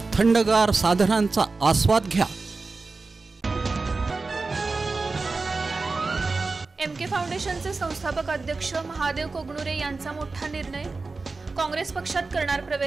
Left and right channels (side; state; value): left; quieter; 3.9 dB